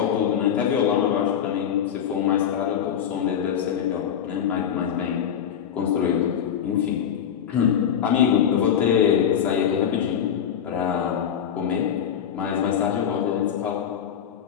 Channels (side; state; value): right; quieter; 8.8 dB